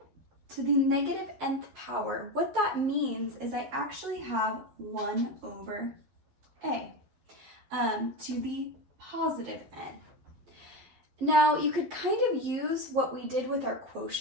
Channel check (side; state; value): left; late; 12 ms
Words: to the negative nth power, what that means is I actually have 1 over a to the positive n. Now you could kind of use what we did with our